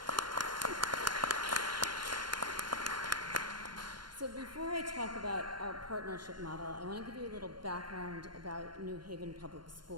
So before I talk about our partnership model, I want to give you a little background about New Haven Public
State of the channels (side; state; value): left; late; 0.71 ms